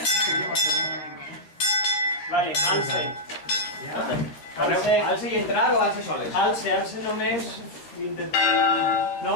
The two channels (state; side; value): late; right; 13 ms